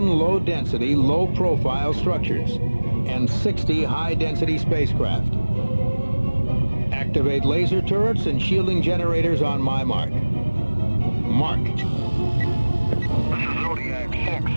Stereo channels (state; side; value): inverted; both; correlation -1.00